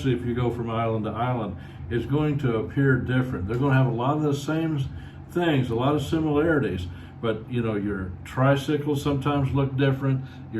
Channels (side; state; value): both; identical; correlation 1.00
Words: if you go from island to island, is going to appear different. They're going to have a lot of the same things, a lot of similarities. But your tricycles sometimes look different. Your